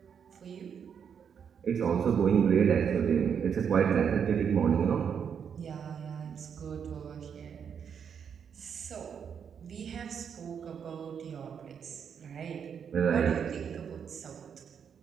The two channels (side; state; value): left; quieter; 7.4 dB